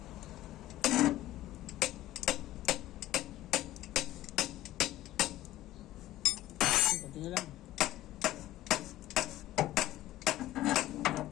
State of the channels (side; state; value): right; quieter; 15.0 dB